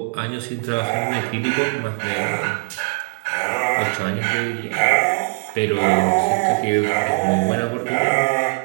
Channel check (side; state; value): left; silent; 59 dB below the other